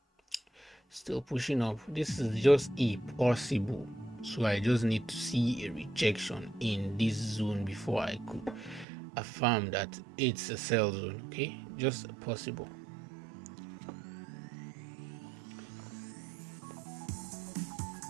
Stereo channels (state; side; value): drops out; left; at 8.8 s